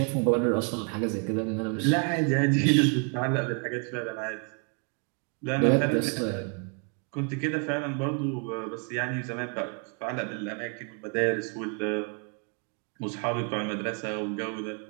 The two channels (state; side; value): quieter; left; 37.1 dB